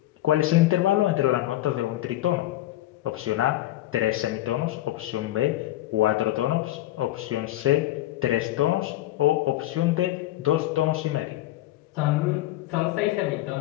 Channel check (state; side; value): quieter; right; 15.4 dB